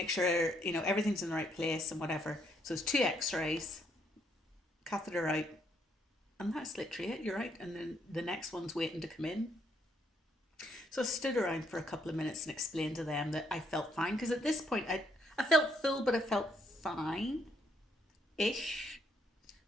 sure, you know, everything's in the right place and whatever. So it's 2 x-rays, catheter out, and that's literally it. You're right. And then the next one's waiting to come in. So I stood around for a couple of minutes and explained to them that I felt fine, because at this point I felt full, but I felt fine-ish.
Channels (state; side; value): normal; both; correlation 0.72